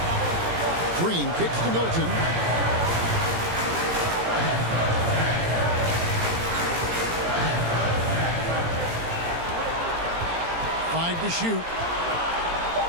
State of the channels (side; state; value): left; late; 18 ms